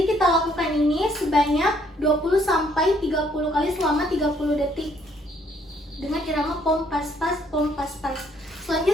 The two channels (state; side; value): normal; both; correlation 0.67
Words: kita lakukan ini sebanyak 20-30 kali selama 30 detik dengan irama pom pas-pas, pom pas-pas.